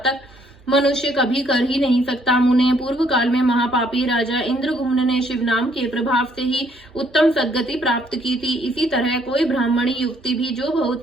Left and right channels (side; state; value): both; normal; correlation 0.66